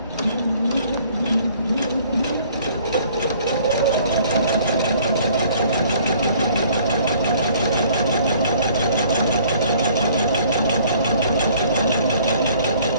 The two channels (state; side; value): inverted; both; correlation -0.57